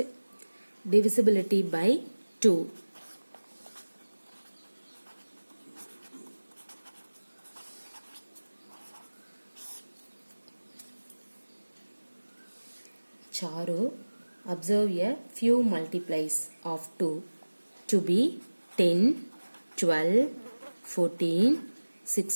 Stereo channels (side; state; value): both; inverted; correlation -1.00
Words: divisibility by 2. Charu observe a few multiplies of 2 to be 10, 12, 14,